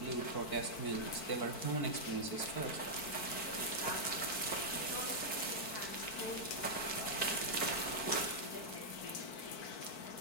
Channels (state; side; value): late; right; 4.5 ms